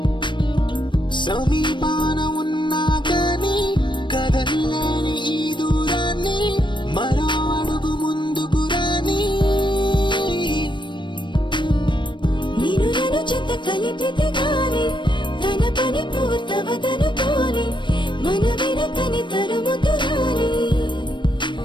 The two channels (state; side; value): late; right; 0.22 ms